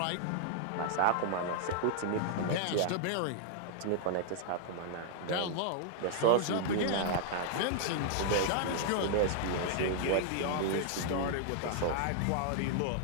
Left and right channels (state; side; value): different; both; correlation -0.01